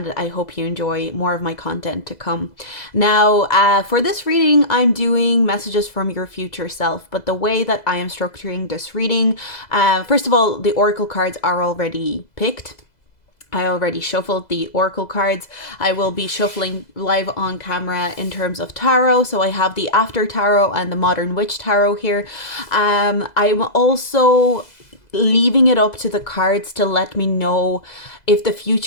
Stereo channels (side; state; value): right; late; 2.0 ms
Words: I hope you enjoy more of my content to come. Now, for this reading, I'm doing messages from your future self, but the way that I am structuring this reading, first of all, the oracle cards are already picked. I already shuffled the oracle cards. I will be shuffling live on camera in terms of tarot. So I have the After Tarot and the Modern Witch Tarot here. I'm also leaving it up to the cards to let me know if the